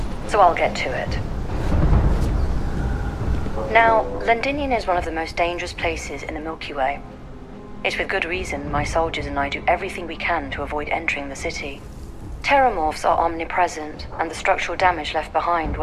so I'll get to it. Now, Londinium is one of the most dangerous places in the Milky Way. It's with good reason my soldiers and I do everything we can to avoid entering the city. Terramorphs are omnipresent, and the structural damage left behind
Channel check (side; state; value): both; identical; correlation 1.00